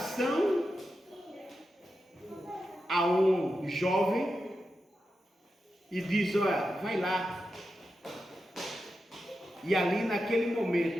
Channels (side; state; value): both; normal; correlation 0.89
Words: a um jovem e diz: olha, vai lá. E ali naquele